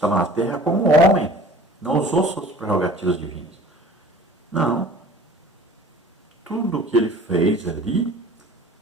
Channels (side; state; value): both; normal; correlation 0.46